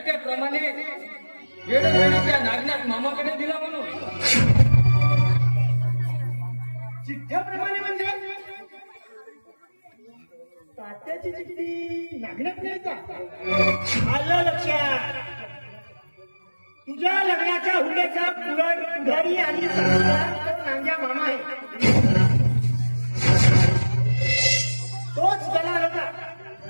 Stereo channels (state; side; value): inverted; both; correlation -1.00